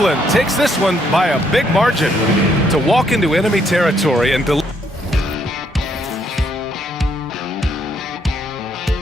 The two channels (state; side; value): normal; both; correlation 0.71